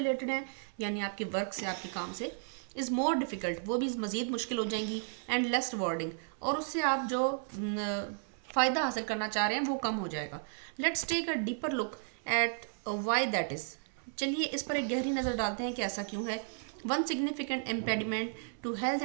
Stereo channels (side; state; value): left; silent; 55 dB below the other